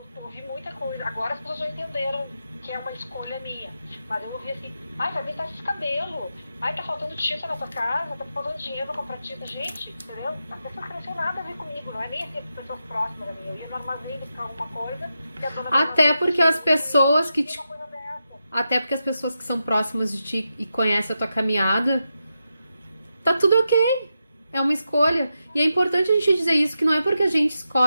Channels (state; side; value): inverted; both; correlation -0.87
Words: ouvi muita coisa. Agora as pessoas já entenderam que é uma escolha minha. Mas eu ouvi assim, ai, vai pintar esse cabelo. Ai, tá faltando tinta na tua casa, tá faltando dinheiro pra comprar tinta. Gente, entendeu? As pessoas não tinham nada a ver comigo, não é nem assim, as pessoas próximas a mim. Eu ia no armazém buscar alguma coisa e a dona... Até porque as pessoas que te... Até porque as pessoas que são próximas de ti e conhecem a tua caminhada, tá tudo ok. É uma escolha. E é importante a gente dizer isso, que não é porque a gente